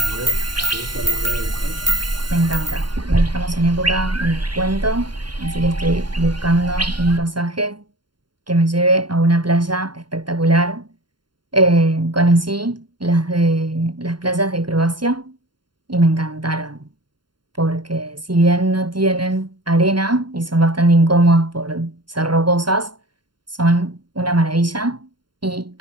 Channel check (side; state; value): left; late; 0.72 ms